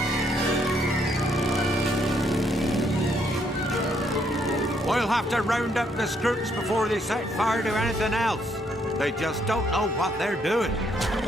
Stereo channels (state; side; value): normal; both; correlation 0.71